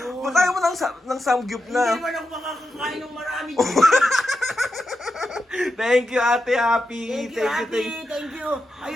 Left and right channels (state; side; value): normal; both; correlation 0.88